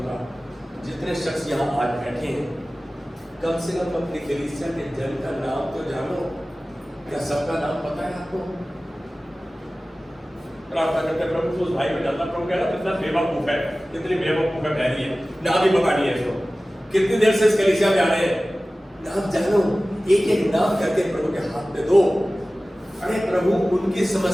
जितने शख्स यहाँ आज बैठे हैं, कम से कम अपनी कलीसिया के जन का नाम तो जानो। क्या सबका नाम पता है आपको? प्रार्थना करते प्रभु उस भाई को जानना, प्रभु कह रहा कितना बेवकूफ है, कितनी बेवकूफ है बहरी है, नाम ही पता नहीं है इसको, कितनी देर से इस कलीसिया में आ रहे हैं, नाम जानो, एक एक नाम करके प्रभु के हाथ में दो। अरे प्रभु उनकी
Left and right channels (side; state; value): both; normal; correlation 0.97